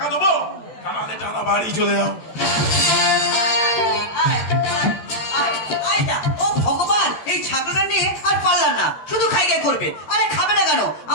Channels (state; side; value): late; right; 13 ms